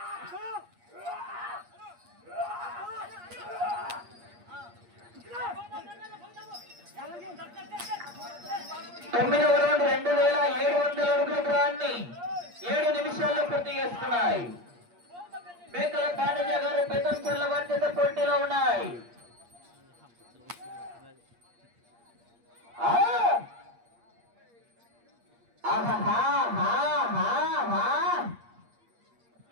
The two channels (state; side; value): late; left; 8.5 ms